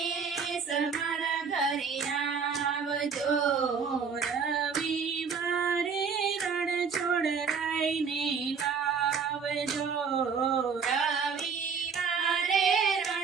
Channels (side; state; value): left; quieter; 5.9 dB